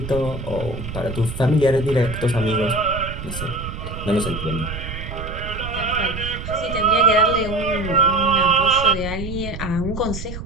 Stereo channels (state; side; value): noise; right; rumble, 8 dB below the sound